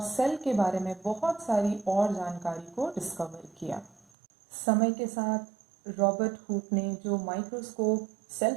सेल के बारे में बहुत सारी और जानकारी को डिस्कवर किया। समय के साथ रॉबर्ट हुक ने जो माइक्रोस्कोप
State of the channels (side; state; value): left; drops out; at 4.0 s